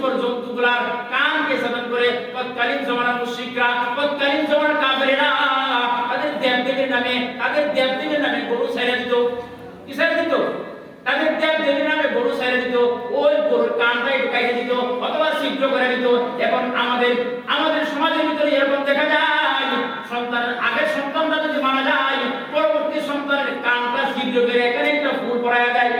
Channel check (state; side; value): identical; both; correlation 1.00